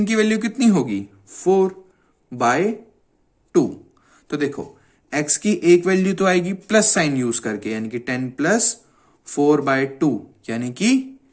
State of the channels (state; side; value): identical; both; correlation 1.00